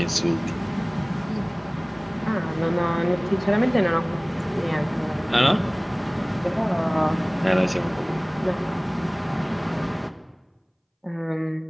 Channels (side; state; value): both; identical; correlation 1.00